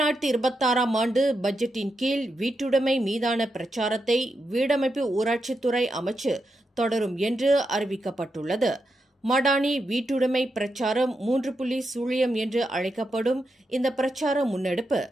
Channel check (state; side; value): normal; both; correlation 0.85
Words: ஆண்டு பட்ஜெட்டின் கீழ் வீட்டுடைமை மீதான பிரச்சாரத்தை வீடமைப்பு ஊராட்சித்துறை அமைச்சு தொடரும் என்று அறிவிக்கப்பட்டுள்ளது. மடானி வீட்டுடைமை பிரச்சாரம் 3.0 என்று அழைக்கப்படும் இந்த பிரச்சார முன்னெடுப்பு